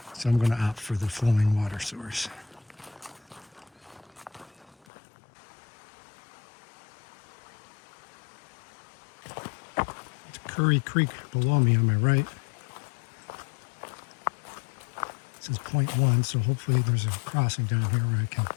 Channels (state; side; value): drops out; right; at 4.8 s